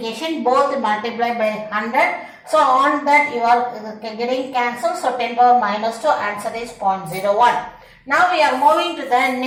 both multiply by 100. So on that you are getting cancelled. So 10 power minus 2 answer is 0.01. Now we are moving to the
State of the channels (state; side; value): identical; both; correlation 1.00